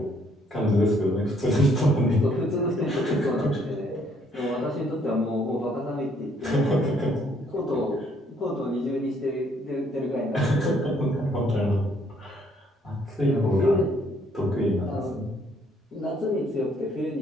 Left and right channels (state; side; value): normal; both; correlation 0.66